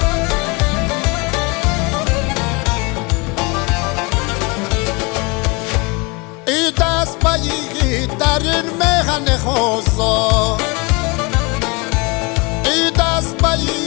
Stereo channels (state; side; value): quieter; right; 28.3 dB